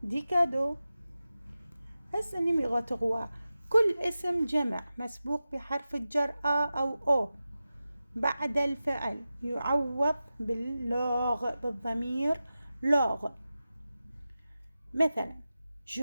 des cadeaux. هسه numéro 3: كل اسم جمع مسبوق بحرف الجر أو أو بعد الفعل يعوض باللوغ، بالضمير لوغ. مثلا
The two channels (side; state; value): both; inverted; correlation -0.94